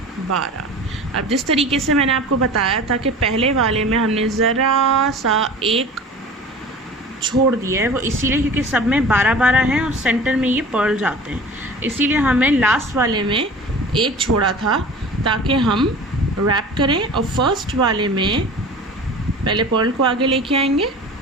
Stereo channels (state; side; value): normal; both; correlation 0.39